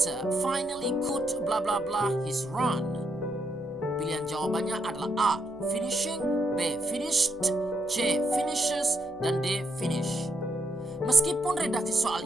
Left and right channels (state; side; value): noise; right; hum, 27 dB below the sound